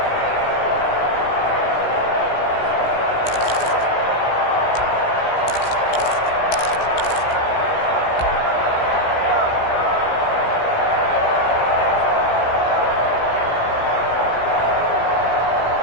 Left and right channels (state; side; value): late; right; 17 ms